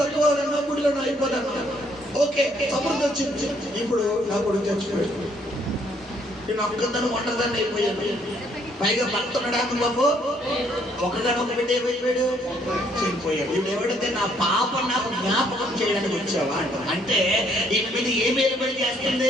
గుడిలో అయిపోతాను. ఓకే, సమృద్ధి వచ్చింది. ఇప్పుడు నా కొడుకు చచ్చిపోయాడు, నేను ఒక్కదాన్ని ఒంటరిదాన్ని అయిపోయాను. పైగా భర్త ఉన్నాడు బాబు, ఒకగానొక బిడ్డ అయిపోయాడు, చనిపోయాడు. ఇప్పుడు ఎవడైతే నా పాప నాకు జ్ఞాపకం చేయడానికి వచ్చావా అంటే ఈయన మీద ఏం ఏలుబడి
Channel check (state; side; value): normal; both; correlation 0.67